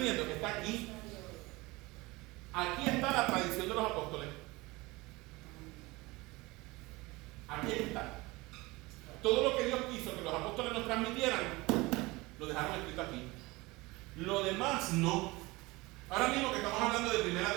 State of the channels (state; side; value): quieter; left; 22.3 dB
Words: Que está aquí. Aquí está la tradición de los apóstoles. Aquí está. Todo lo que Dios quiso que los apóstoles nos transmitieran, lo dejaron escrito aquí. Lo demás no. Ahora mismo que estamos hablando de 1